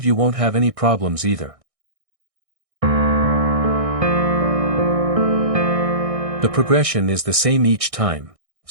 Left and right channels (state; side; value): late; left; 1.6 ms